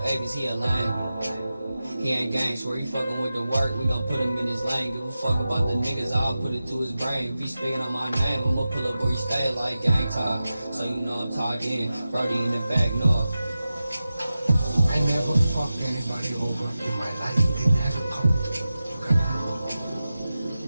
Avis, he a lame. He ain't gang, swear he fucking with the work, we gon' put him in his lane. Give a fuck about the niggas, I'll put it to his brain. If he speaking on my name, I'ma pull up where he stay like gang talk. So you know I'm talked in, Brody in the back north. I never fucked anybody over in my life, it never come.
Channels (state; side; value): inverted; both; correlation -0.94